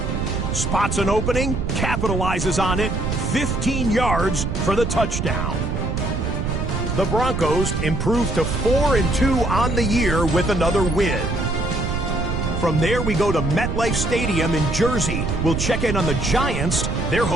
Spots an opening, capitalizes on it, 15 yards for the touchdown. The Broncos improved to 4-2 on the year with another win. From there, we go to MetLife Stadium in Jersey. We'll check in on the Giants. They're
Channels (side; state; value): right; noise; rumble, 2 dB below the sound